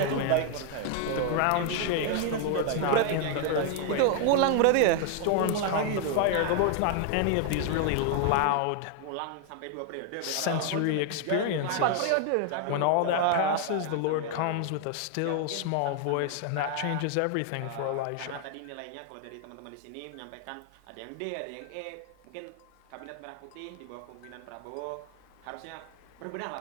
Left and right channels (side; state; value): both; different; correlation 0.00